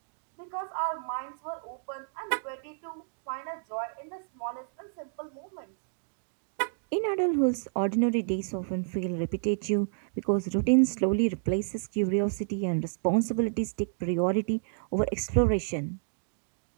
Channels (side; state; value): left; silent; digital silence